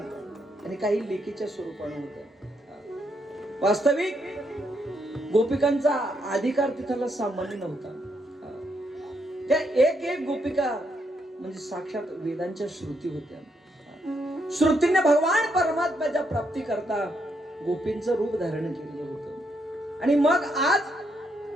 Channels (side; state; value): both; normal; correlation 0.77